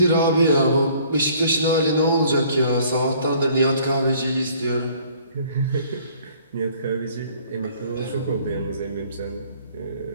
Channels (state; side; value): inverted; both; correlation -0.57